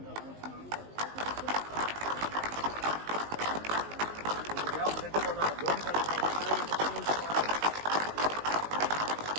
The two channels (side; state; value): left; late; 19 ms